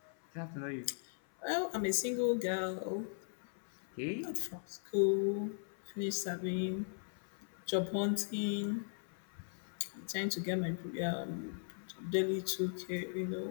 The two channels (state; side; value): silent; right; 52 dB below the other